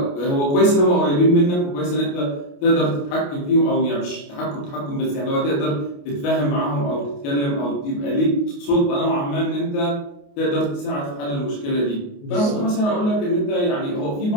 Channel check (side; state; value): right; late; 28 ms